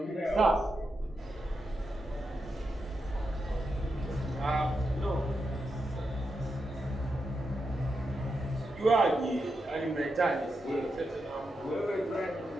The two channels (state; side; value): normal; both; correlation 0.86